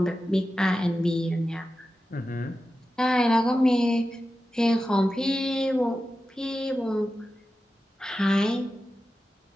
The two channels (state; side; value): normal; both; correlation 0.92